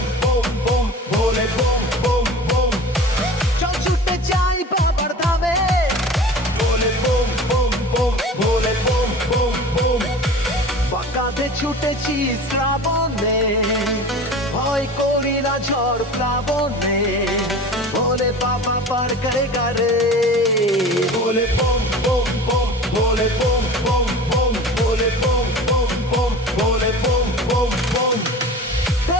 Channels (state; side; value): normal; both; correlation 0.38